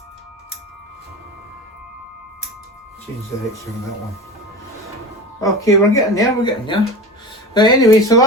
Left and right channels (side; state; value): both; normal; correlation 0.31